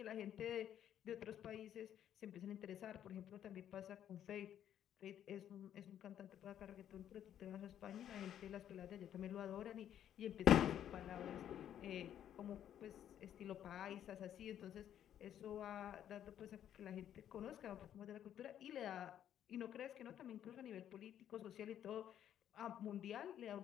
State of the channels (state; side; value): quieter; right; 10.3 dB